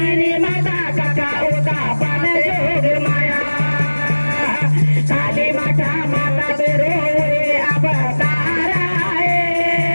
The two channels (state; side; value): inverted; both; correlation -1.00